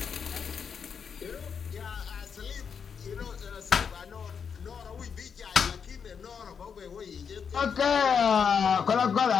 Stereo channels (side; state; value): right; quieter; 6.6 dB